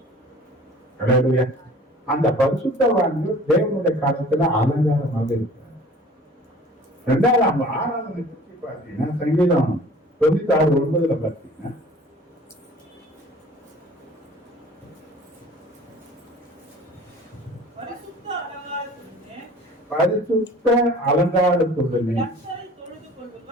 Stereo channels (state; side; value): normal; both; correlation 0.47